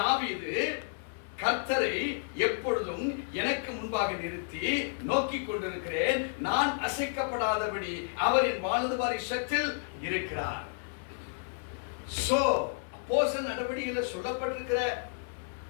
கர்த்தரை எப்பொழுதும் எனக்கு முன்பாக நிறுத்தி நோக்கிக் கொண்டிருக்கிறேன், நான் அசைக்கப்படாதபடி அவரின் வலது பாரிசத்தில் இருக்கிறார். சோ அப்போஸ்தலர் நடவடிக்கையில் சொல்லப்பட்டிருக்கிற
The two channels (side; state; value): right; silent; 57 dB below the other